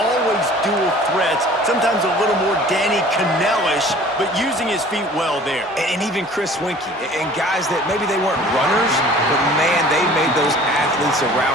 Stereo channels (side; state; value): both; normal; correlation 0.48